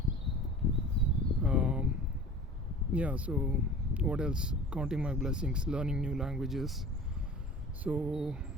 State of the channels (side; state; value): both; normal; correlation 0.42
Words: Yeah, so what else? Counting my blessings, learning new languages. So